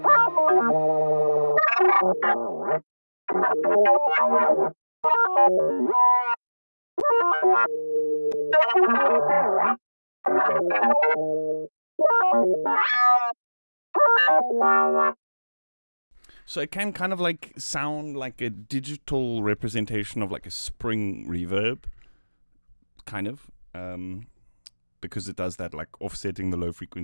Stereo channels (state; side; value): inverted; both; correlation -1.00